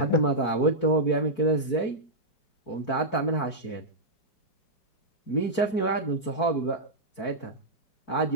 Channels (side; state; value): right; late; 4.5 ms